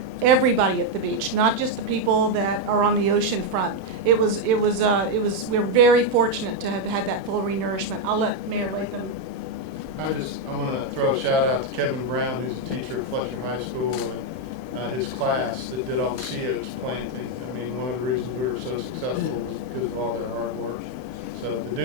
everybody at the beach, not just the people that are on the ocean front. We're very fortunate to have had that full renourishment. I'll let Mayor Latham. I want to throw a shout out to Kevin Brown, who's a teacher at Fletcher High School, and his class that did all the sea oats planting. I mean, one of the reasons we were so successful was because of all their hard work. So the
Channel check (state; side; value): late; left; 31 ms